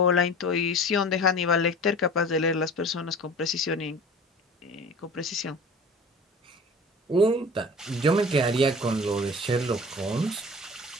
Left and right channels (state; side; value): normal; both; correlation 0.39